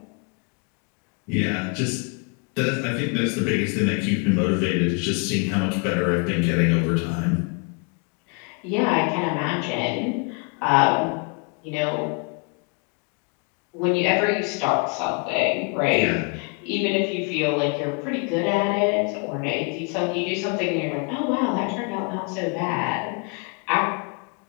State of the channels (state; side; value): quieter; right; 34.5 dB